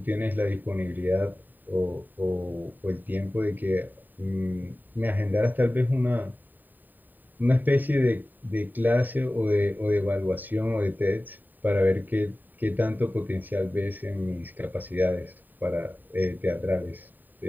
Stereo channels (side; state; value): left; late; 0.089 ms